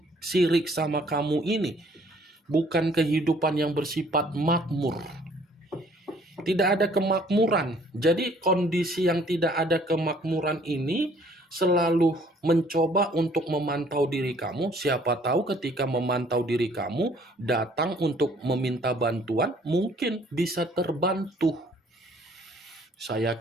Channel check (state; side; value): normal; both; correlation 0.59